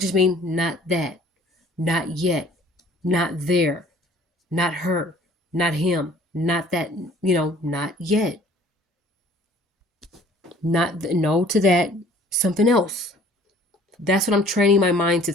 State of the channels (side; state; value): both; normal; correlation 0.53